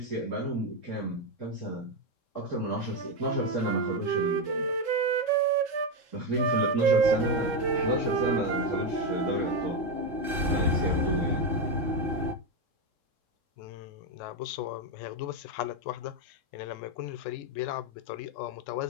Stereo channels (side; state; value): right; late; 3.7 ms